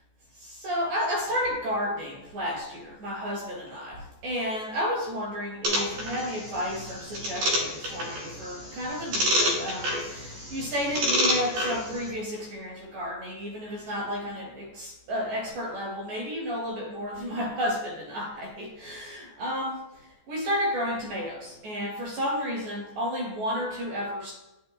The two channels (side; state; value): left; late; 14 ms